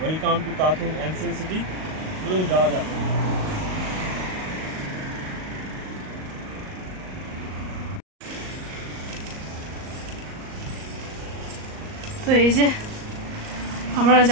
টু তাথুং এনশিয়েন্ট সিটি। চলুন যাওয়া যাক। তো এই যে আমরা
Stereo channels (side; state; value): left; late; 38 ms